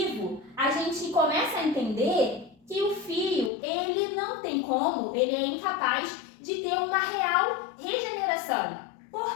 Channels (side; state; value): right; drops out; at 3.5 s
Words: a gente começa a entender que o fio, ele não tem como, ele é incapaz de ter uma real regeneração.